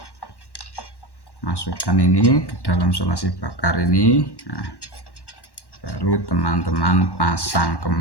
masukkan ini ke dalam solasi bakar ini. Nah, baru teman-teman pasang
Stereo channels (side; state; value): right; late; 1.1 ms